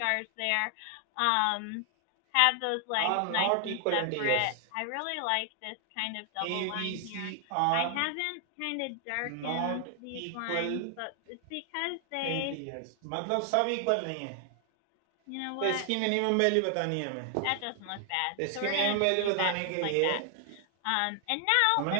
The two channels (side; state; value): both; different; correlation 0.00